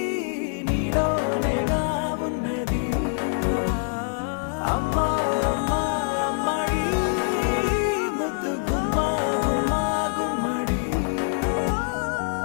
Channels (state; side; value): silent; right; digital silence